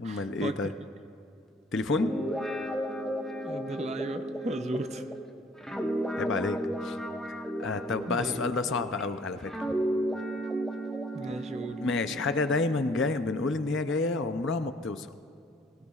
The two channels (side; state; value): both; normal; correlation 0.58